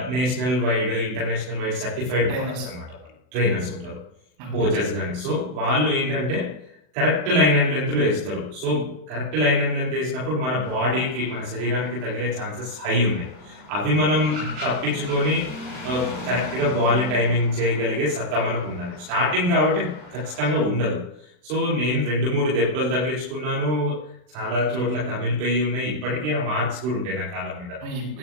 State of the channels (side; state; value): left; late; 39 ms